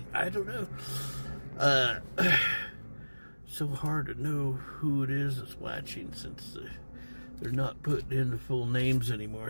I don't know. So hard to know who it is that's watching since they're not putting in the full names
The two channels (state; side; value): inverted; both; correlation -1.00